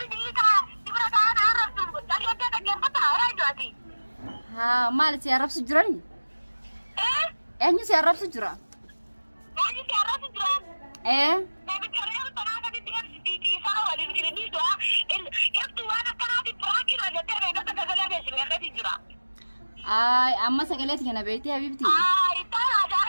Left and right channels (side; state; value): both; inverted; correlation -1.00